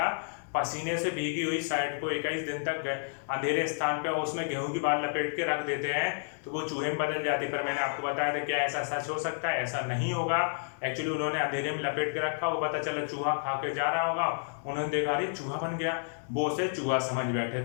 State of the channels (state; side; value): silent; right; digital silence